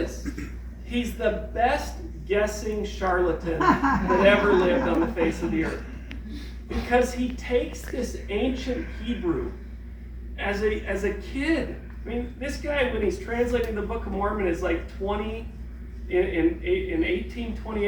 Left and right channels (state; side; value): identical; both; correlation 1.00